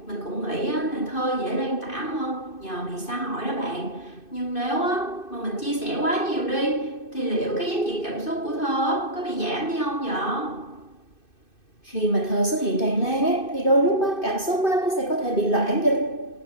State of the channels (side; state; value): right; late; 2.6 ms